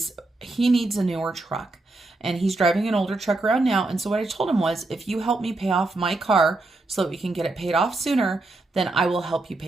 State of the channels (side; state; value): left; quieter; 3.0 dB